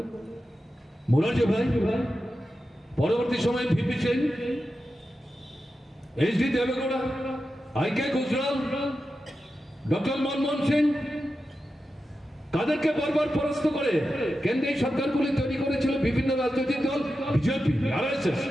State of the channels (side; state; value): both; normal; correlation 0.91